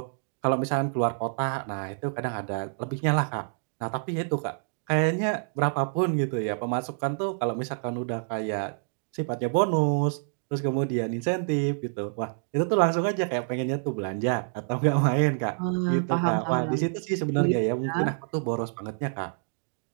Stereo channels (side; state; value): left; silent; digital silence